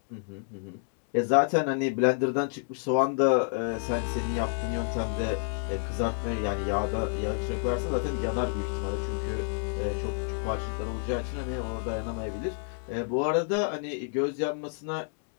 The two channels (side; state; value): right; silent; 58 dB below the other